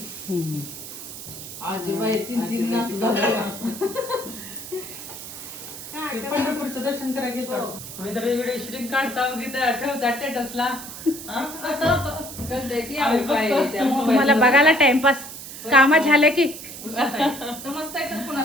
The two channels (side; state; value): right; noise; hiss, 11 dB below the sound